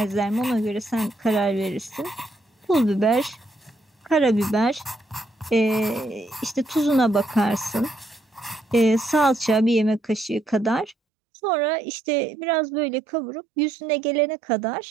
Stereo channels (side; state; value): left; drops out; at 11.0 s